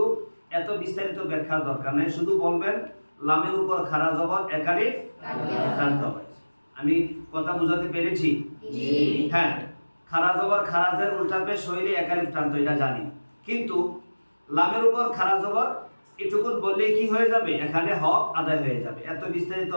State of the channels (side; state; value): both; inverted; correlation -1.00